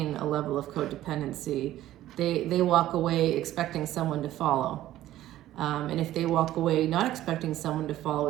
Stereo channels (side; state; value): left; quieter; 14.0 dB